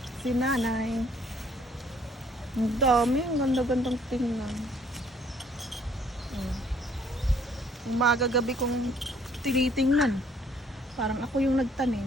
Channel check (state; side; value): normal; both; correlation 0.62